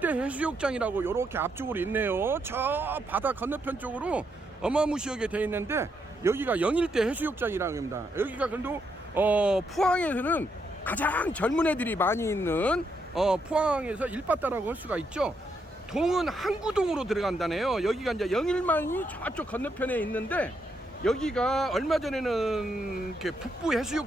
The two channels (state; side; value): normal; both; correlation 0.78